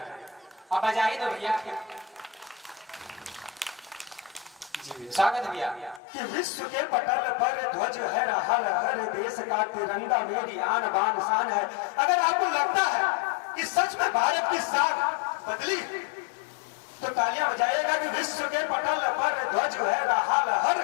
अब बजा ही दो भैया। जी स्वागत है भैया। कि विश्व के पटल पर ध्वज है रहा लहर, देश का तिरंगा मेरी आन बान शान है। अगर आपको लगता है कि सच में भारत की साख बदली, तो तालियां बजाइएगा। कि विश्व के पटल पर ध्वज है रहा लहर,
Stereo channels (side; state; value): right; drops out; at 6.0 s